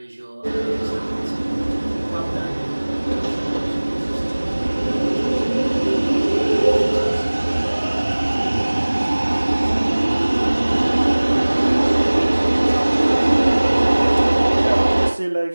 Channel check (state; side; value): inverted; both; correlation -1.00